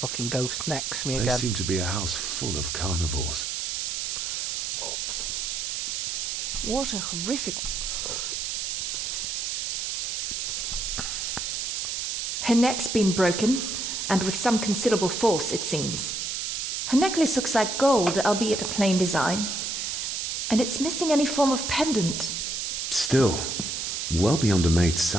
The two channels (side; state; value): right; noise; hiss, 2 dB below the sound